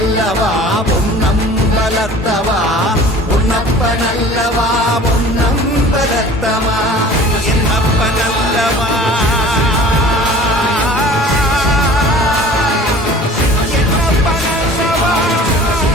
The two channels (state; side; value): normal; both; correlation 0.45